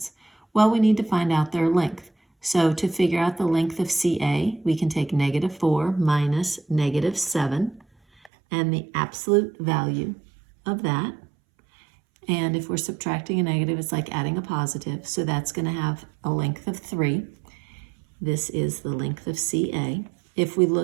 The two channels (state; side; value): drops out; left; at 8.3 s